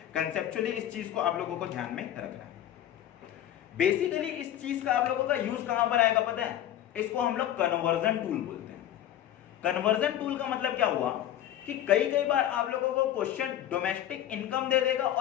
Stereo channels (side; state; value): right; quieter; 11.7 dB